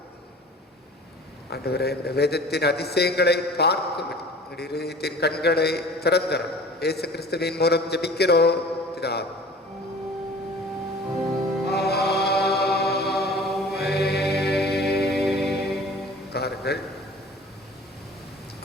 ஆண்டவரே, இந்த வேதத்தின் அதிசயங்களை பார்க்கும் இதயத்தின் கண்களை திறந்தரும். இயேசு கிறிஸ்துவின் மூலம் ஜெபிக்கிறோம் பிதாவே. காருங்கள்.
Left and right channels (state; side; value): normal; both; correlation 0.45